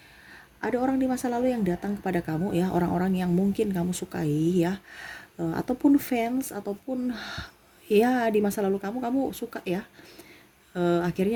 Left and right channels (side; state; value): both; identical; correlation 1.00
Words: ada orang di masa lalu yang datang kepada kamu ya, orang-orang yang mungkin kamu sukai ya, ataupun fans, ataupun ya di masa lalu kamu suka ya.